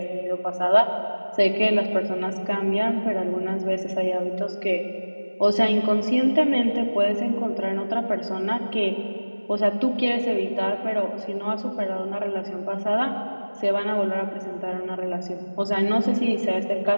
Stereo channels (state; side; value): inverted; both; correlation -1.00